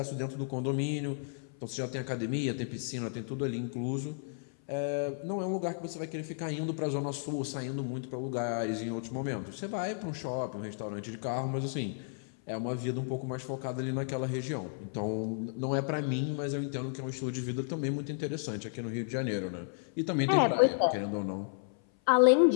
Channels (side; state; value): right; silent; 56 dB below the other